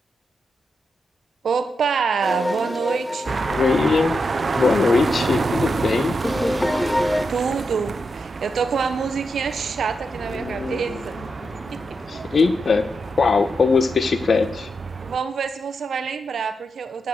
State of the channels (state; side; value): normal; both; correlation 0.85